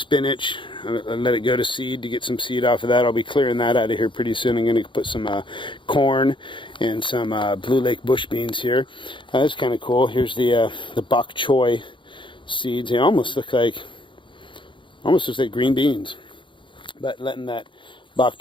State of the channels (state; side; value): late; right; 0.24 ms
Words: I'll let it go to seed to get some seed off of that. I'll be clearing that out of here pretty soon. I'm going to put some corn and some Blue Lake bush beans here. That's kind of cool. Here's the bok choy seeds. They almost look like green beans, but letting that bok